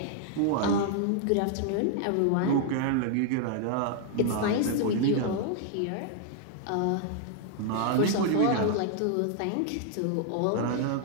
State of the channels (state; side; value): different; both; correlation 0.00